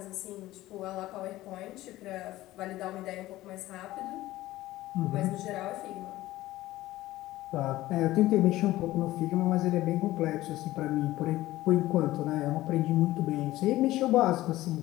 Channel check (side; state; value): right; quieter; 16.5 dB